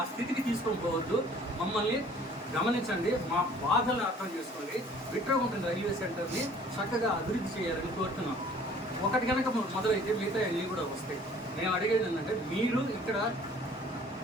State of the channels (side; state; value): both; normal; correlation 0.53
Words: స్థితికి తీసుకొని పోవద్దు, మమ్మల్ని గమనించండి, మా బాధలను అర్థం చేసుకోండి. బిట్రగుంట రైల్వే సెంటర్ని చక్కగా అభివృద్ధి చేయాలని కోరుతున్నాం. ఒకటి కనుక మొదలైతే మిగతా అన్నీ కూడా వస్తాయి. మేము అడిగేది ఏంటంటే, మీరు ఇక్కడ